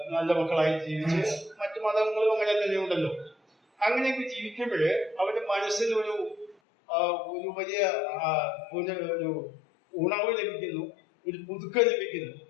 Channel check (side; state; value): right; drops out; at 6.6 s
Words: നല്ല മക്കളായി ജീവിച്ച്, മറ്റു മതങ്ങളും അങ്ങനെ തന്നെ ഉണ്ടല്ലോ, അങ്ങനെയൊക്കെ ജീവിക്കുമ്പോഴ് അവരുടെ മനസ്സിൽ ഒരു വലിയ ഒരു ഉണർവ് ലഭിക്കുന്നു, ഒരു പുതുക്കം ലഭിക്കുന്നു.